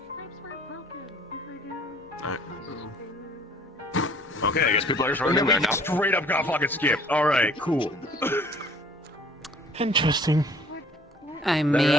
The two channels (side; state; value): both; normal; correlation 0.54